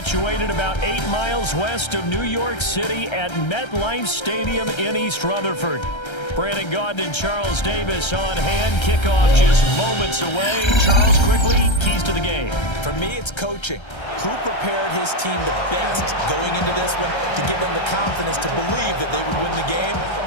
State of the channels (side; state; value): right; late; 1.3 ms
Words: about 8 miles west of New York City at MetLife Stadium in East Rutherford. Brandon Gaudin and Charles Davis on hand. Kickoff just moments away. Charles, quickly, keys to the game. For me, it's coaching. Who prepared his team the best going into this one to give them the confidence to believe that they would win the game?